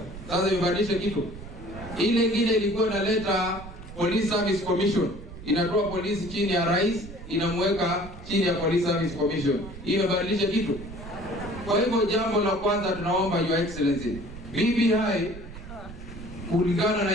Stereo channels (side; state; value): right; noise; rumble, 14 dB below the sound